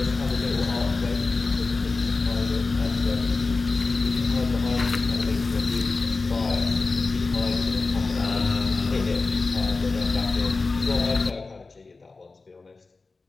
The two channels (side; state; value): right; quieter; 3.8 dB